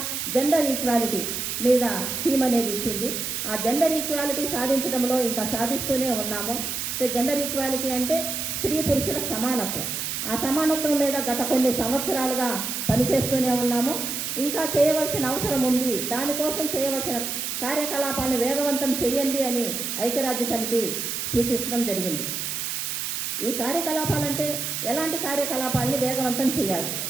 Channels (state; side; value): noise; right; hiss, 3 dB below the sound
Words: జెండర్ ఈక్వాలిటీ మీద థీమ్ అనేది ఇచ్చింది. ఆ జెండర్ ఈక్వాలిటీ సాధించడంలో ఇంకా సాధిస్తూనే ఉన్నాము. జెండర్ ఈక్వాలిటీ అంటే స్త్రీ పురుషుల సమానత్వం. ఆ సమానత్వం మీద గత కొన్ని సంవత్సరాలుగా పనిచేస్తూనే ఉన్నాము. ఇంకా చేయవలసిన అవసరం ఉంది. దానికోసం చేయవలసిన కార్యకలాపాలను వేగవంతం చేయండి అని ఐక్యరాజ్య సమితి సూచించడం జరిగింది. ఈ కార్యకలాపాలంటే ఎలాంటి కార్యకలాపాలని వేగవంతం చేయాలి